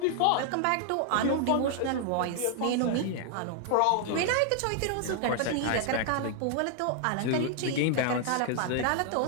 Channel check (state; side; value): different; both; correlation 0.00